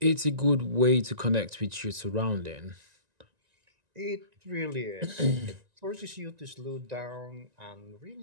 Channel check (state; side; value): late; left; 1.9 ms